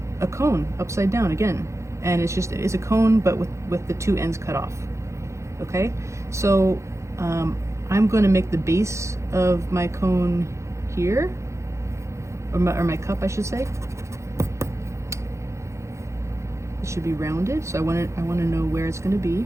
a cone upside down again, and it's a cone but with the two ends cut off. Okay, so I'm going to make the base of my cone here, or my cup, I should say. It should be rounded, so I want to know where it's going to be,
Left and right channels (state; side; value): late; left; 0.14 ms